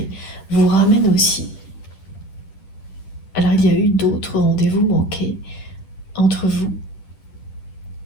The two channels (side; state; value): right; late; 10 ms